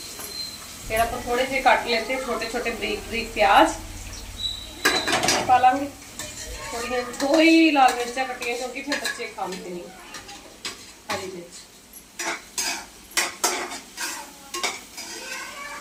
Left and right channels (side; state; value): both; identical; correlation 1.00